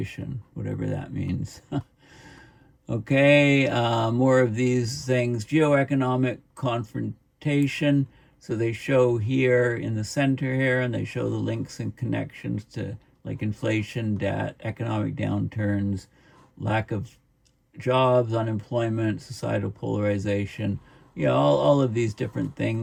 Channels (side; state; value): both; identical; correlation 1.00